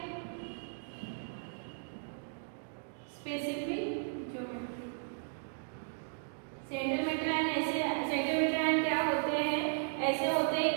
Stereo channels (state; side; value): silent; left; digital silence